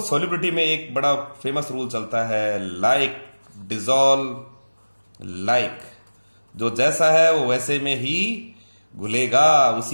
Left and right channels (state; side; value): inverted; both; correlation -1.00